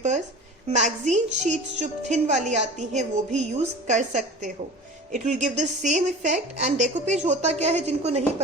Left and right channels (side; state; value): both; normal; correlation 0.38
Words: magazine sheets जो thin वाली आती हैं वो भी use कर सकते हो. It will give the same effect. And decoupage होता क्या है जिनको नहीं